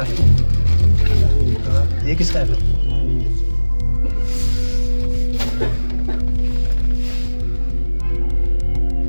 है? ये किसका है?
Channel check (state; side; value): inverted; both; correlation -1.00